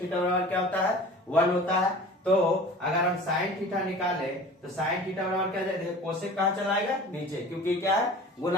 theta बराबर क्या होता है 1 होता है। तो अगर हम साइन थीटा निकाले तो साइन थीटा बराबर क्या जाएगा, कोसेक कहाँ चला आएगा नीचे, क्योंकि क्या है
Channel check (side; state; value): both; normal; correlation 0.41